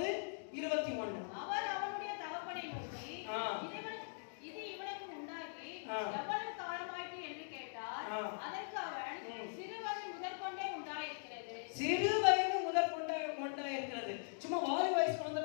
அவர் அவனுடைய தகப்பனை நோக்கி, இது இவனுக்கு உண்டாகி எவ்வளவு காலமாயிற்று என்று கேட்டார். அதற்கு அவன், சிறுவயது முதற்கொண்டே உண்டாயிருக்கிறது. சிறுவயது முதற்கொண்டே உண்டாயிருக்கிறது. சும்மா வாலி வயசு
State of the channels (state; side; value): silent; right; digital silence